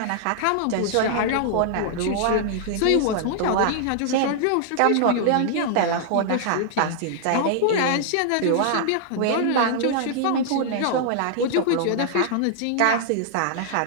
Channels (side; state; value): both; different; correlation -0.01